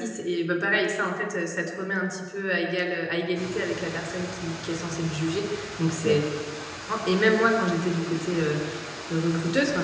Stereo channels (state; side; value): identical; both; correlation 1.00